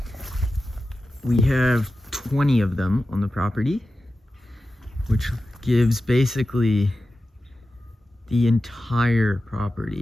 We have 20 of them on the property, which gives basically the entire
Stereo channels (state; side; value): normal; both; correlation 0.93